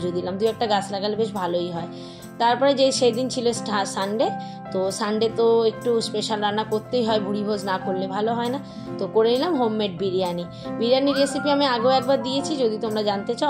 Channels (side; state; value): both; identical; correlation 1.00